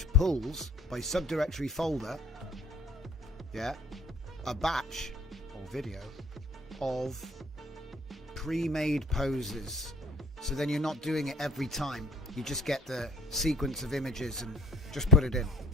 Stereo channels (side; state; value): both; normal; correlation 0.52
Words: pulls by subdirectory folder, yeah, a batch or video of pre-made poses. So then you're not doing it every time. You just get the sequence of images and just put it in.